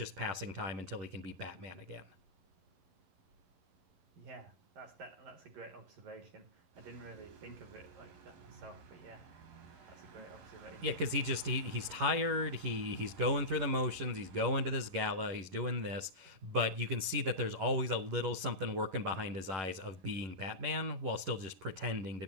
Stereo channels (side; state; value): left; late; 11 ms